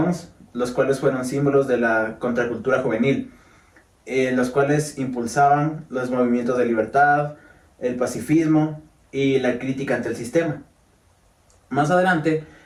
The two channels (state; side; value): identical; both; correlation 1.00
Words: los cuales fueron símbolos de la contracultura juvenil, los cuales impulsaban los movimientos de libertad, el pacifismo y la crítica ante el sistema. Más adelante,